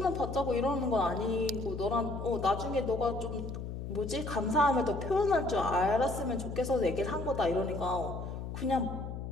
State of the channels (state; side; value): noise; left; hum, 7 dB below the sound